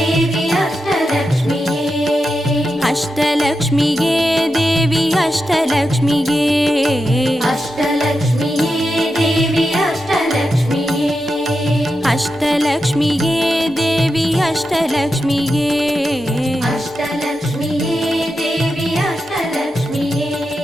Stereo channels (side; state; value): both; normal; correlation 0.88